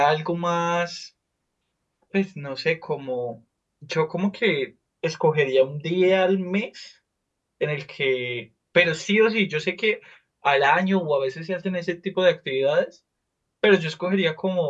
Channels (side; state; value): both; identical; correlation 1.00